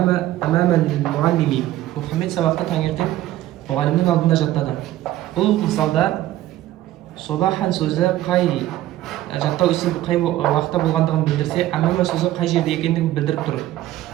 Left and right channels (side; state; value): left; quieter; 14.4 dB